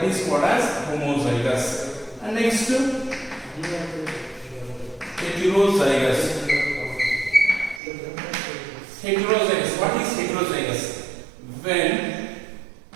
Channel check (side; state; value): left; drops out; at 7.8 s